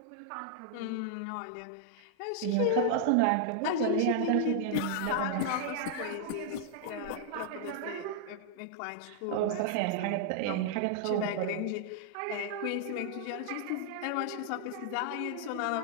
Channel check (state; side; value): different; both; correlation -0.01